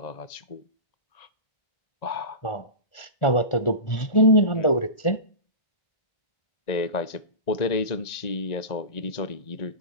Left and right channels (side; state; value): right; late; 1.4 ms